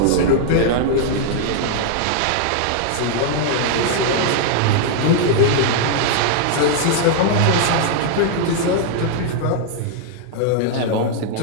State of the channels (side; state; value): both; different; correlation 0.00